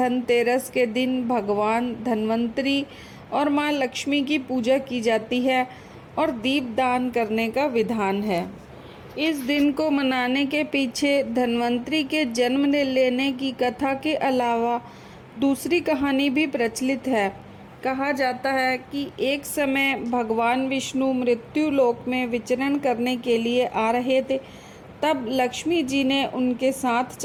के दिन भगवान धन्वंतरी और माँ लक्ष्मी की पूजा की जाती है और दीपदान करने का विधान है। इस दिन को मनाने के पीछे धन्वंतरी के जन्म लेने की कथा के अलावा दूसरी कहानी भी प्रचलित है। कहा जाता है कि एक समय भगवान विष्णु मृत्यु लोक में विचरण करने के लिए आ रहे थे। तब लक्ष्मी जी ने उनके साथ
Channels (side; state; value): both; identical; correlation 1.00